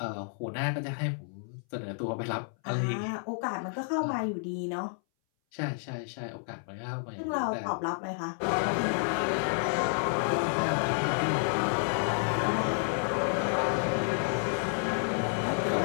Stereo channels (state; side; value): silent; right; 58 dB below the other